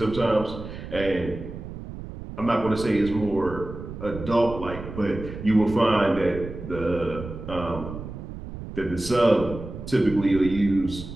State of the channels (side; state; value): right; noise; rumble, 10 dB below the sound